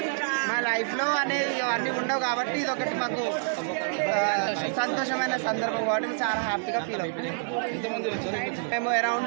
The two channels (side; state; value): left; silent; digital silence